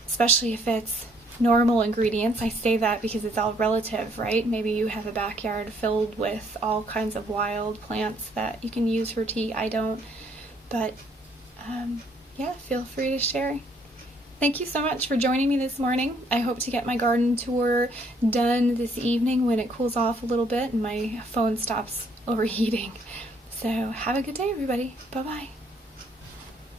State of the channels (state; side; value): normal; both; correlation 0.66